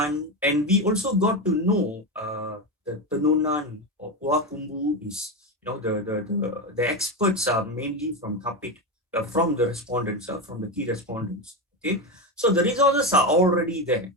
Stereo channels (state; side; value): normal; both; correlation 0.15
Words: and we also got to know the Tenunan or Puakumbu is, the experts are mainly from Kapit, from the respondents, from the key respondents. Okay, so the resources are already there.